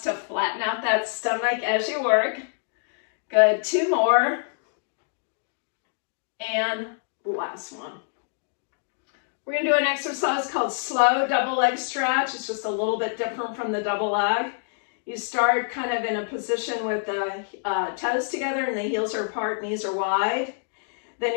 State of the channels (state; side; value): silent; right; digital silence